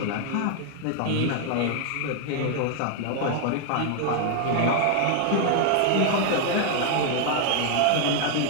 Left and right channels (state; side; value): different; both; correlation 0.00